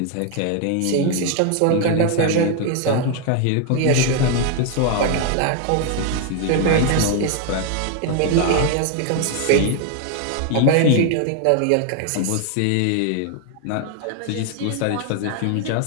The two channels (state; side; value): different; both; correlation 0.01